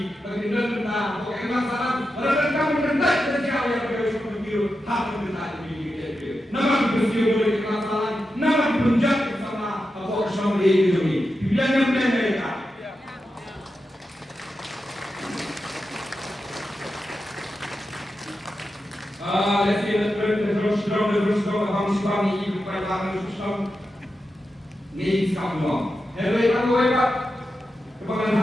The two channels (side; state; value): both; normal; correlation 0.89